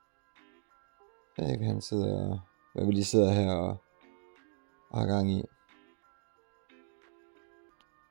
Jeg ved ikke, han sidder, hvad vi lige sidder her og har gang i.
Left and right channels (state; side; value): silent; left; digital silence